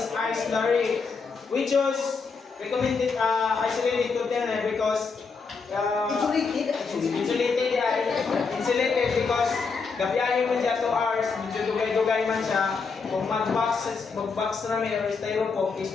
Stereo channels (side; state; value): right; quieter; 4.9 dB